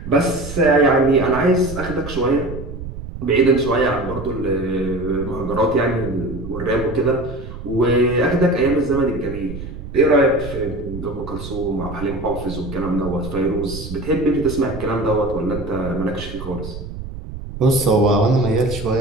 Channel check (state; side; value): noise; right; rumble, 10 dB below the sound